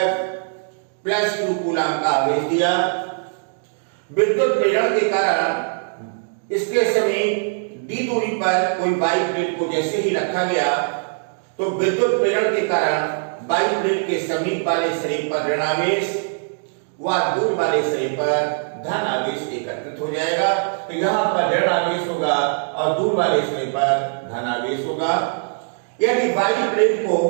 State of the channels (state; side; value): silent; left; digital silence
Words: +Q कूलम का आवेश दिया। विद्युत प्रेरण के कारण इसके समीप d दूरी पर कोई वाई प्लेट को जैसे ही रखा गया तो विद्युत प्रेरण के कारण वाई प्लेट के समीप वाले शरीर पर ऋण आवेश व दूर वाले शरीर पर धन आवेश एकत्रित हो जाएगा। तो यहाँ पर ऋण आवेश होगा और दूर वाले शरीर पर धन आवेश होगा। यदि वाई प्लेट को